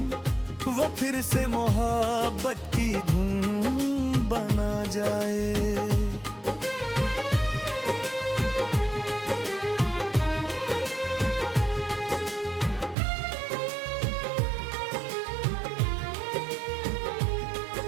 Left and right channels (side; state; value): left; drops out; at 13.0 s